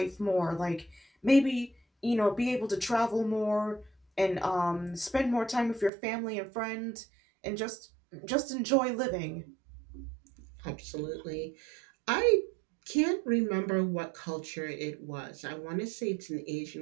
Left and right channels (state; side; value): drops out; left; at 5.9 s